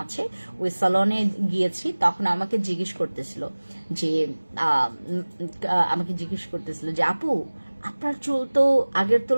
আছে, ওই সেলনে গিয়েছি। তখন আমাকে জিজ্ঞেস করতেছিল যে আপু আপনার চুল তো আগের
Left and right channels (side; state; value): both; inverted; correlation -1.00